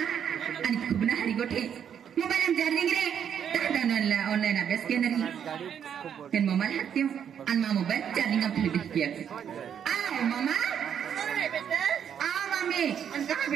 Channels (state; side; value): quieter; left; 8.5 dB